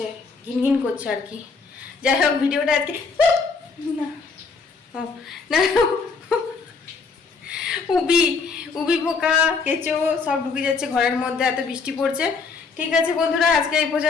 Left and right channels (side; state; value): right; quieter; 4.7 dB